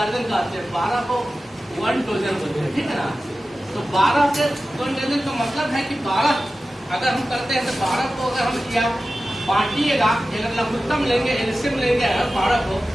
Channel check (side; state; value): both; normal; correlation 0.94